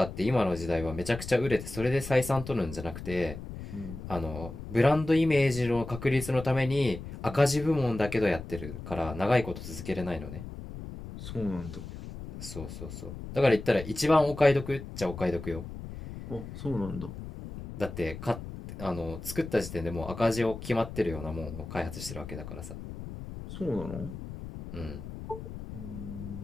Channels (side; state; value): left; noise; rumble, 10 dB below the sound